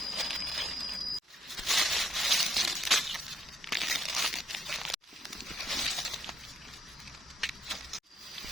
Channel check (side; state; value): both; normal; correlation 0.70